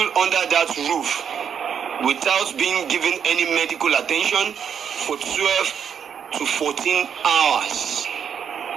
under that roof without being given any medical attention for 12 to 14 hours.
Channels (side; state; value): left; quieter; 7.7 dB